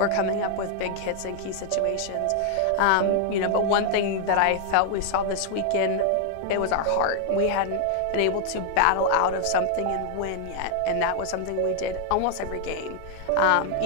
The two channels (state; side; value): different; both; correlation 0.00